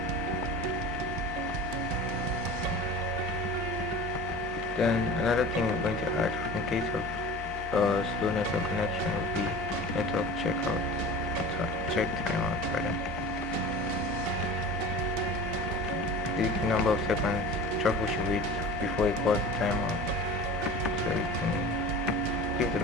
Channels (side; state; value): both; normal; correlation 0.38